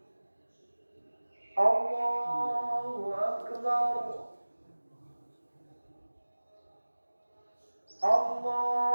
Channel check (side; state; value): both; inverted; correlation -1.00